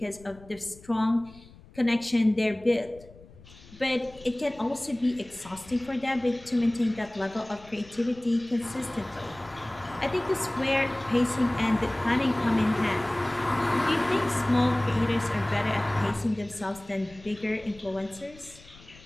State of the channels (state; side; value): noise; left; rumble, 22 dB below the sound